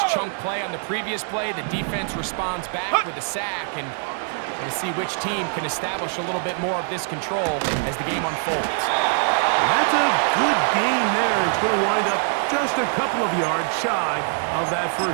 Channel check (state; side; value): silent; left; 61 dB below the other